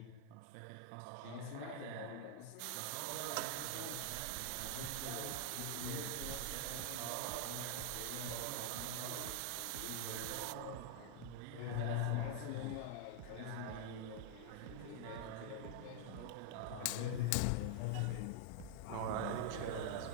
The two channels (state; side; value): different; both; correlation 0.00